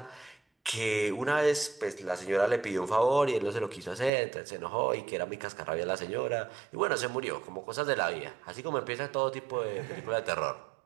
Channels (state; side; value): drops out; left; at 4.1 s